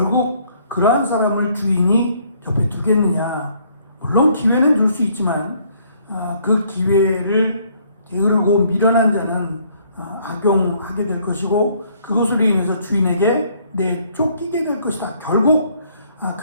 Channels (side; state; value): both; inverted; correlation -0.64